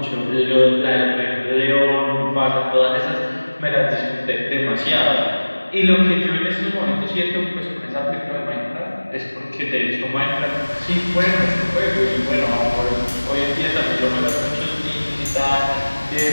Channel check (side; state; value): both; inverted; correlation -1.00